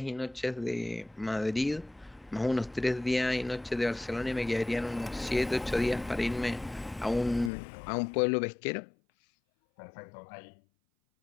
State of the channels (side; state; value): right; drops out; at 7.5 s